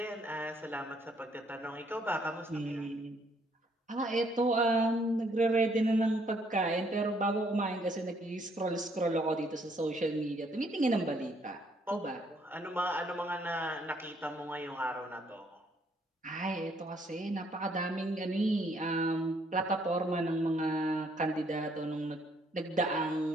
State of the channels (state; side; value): normal; both; correlation 0.68